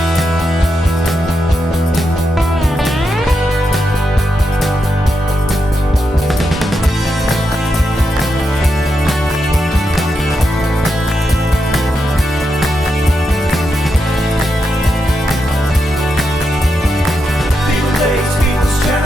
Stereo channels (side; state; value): both; normal; correlation 0.85